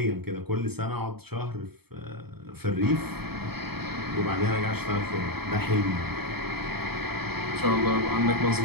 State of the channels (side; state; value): left; late; 0.97 ms